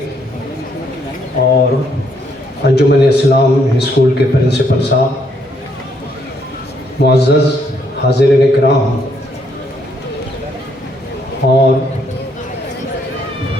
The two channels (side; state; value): both; normal; correlation 0.71